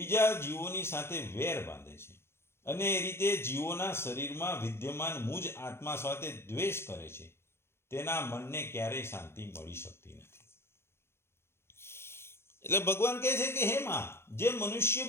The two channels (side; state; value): right; late; 0.12 ms